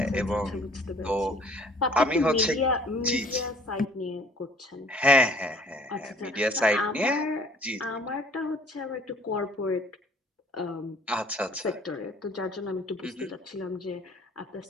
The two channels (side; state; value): both; normal; correlation 0.55